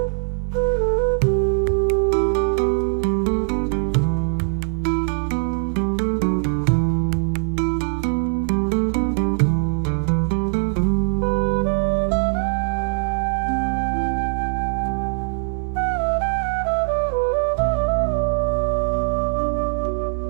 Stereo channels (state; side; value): silent; left; 62 dB below the other